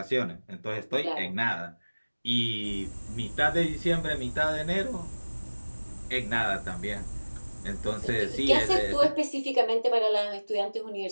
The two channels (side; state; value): both; inverted; correlation -1.00